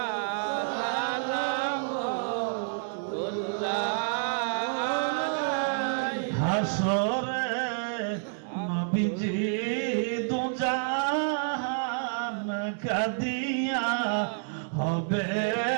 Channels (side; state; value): left; silent; 59 dB below the other